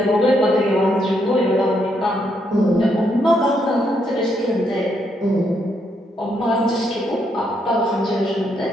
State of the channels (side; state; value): both; normal; correlation 0.76